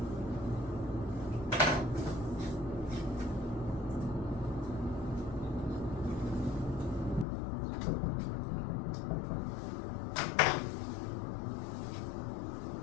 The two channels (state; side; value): drops out; right; at 7.2 s